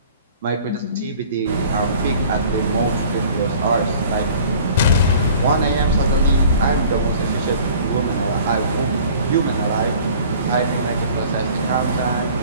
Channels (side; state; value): both; inverted; correlation -0.48